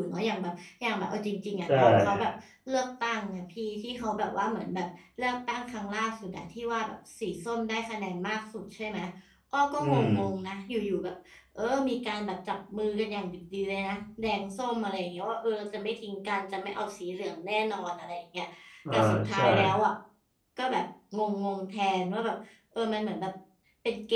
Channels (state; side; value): identical; both; correlation 1.00